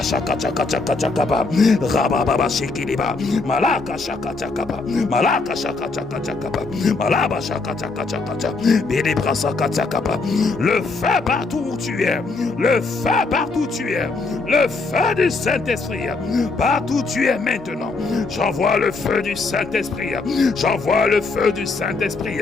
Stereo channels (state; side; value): quieter; right; 3.8 dB